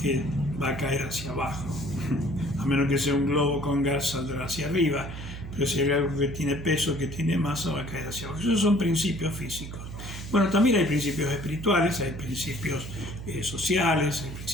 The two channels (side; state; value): right; noise; hum, 10 dB below the sound